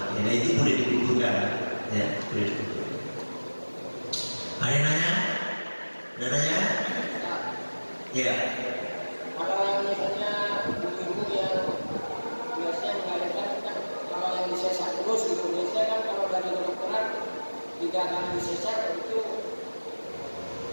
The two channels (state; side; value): inverted; both; correlation -1.00